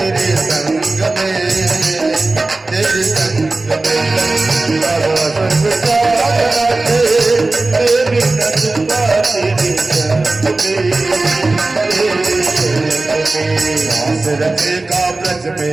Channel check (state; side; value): quieter; left; 3.2 dB